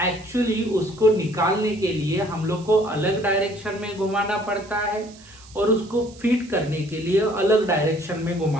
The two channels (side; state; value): right; noise; hiss, 23 dB below the sound